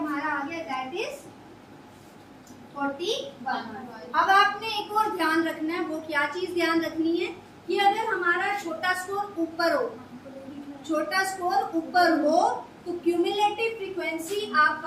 आ गया दैट इज 41। अब आपने एक और ध्यान रखना है, वो क्या चीज ध्यान रखनी है कि अगर हमारा छोटा स्कोर ऊपर हो, छोटा स्कोर ऊपर हो तो क्यूमुलेटिव फ्रीक्वेंसी आप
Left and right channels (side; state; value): both; identical; correlation 1.00